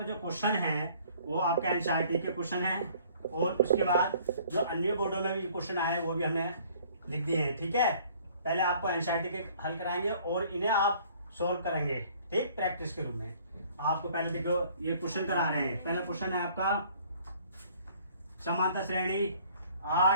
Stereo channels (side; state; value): both; inverted; correlation -0.56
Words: जो क्वेश्चन है वो आपका एनसीईआरटी के क्वेश्चन है और उसके बाद जो अन्य बोर्डों में भी क्वेश्चन आए वो भी हमने लिख दिए हैं। ठीक है, पहले आपको एनसीईआरटी के हल कराएंगे और इन्हें आप सोल्व करेंगे, ठीक, प्रैक्टिस के रूप में। आपको पहले देखो ये क्वेश्चन करा रहे हैं। पहला क्वेश्चन है आपका समांतर श्रेणी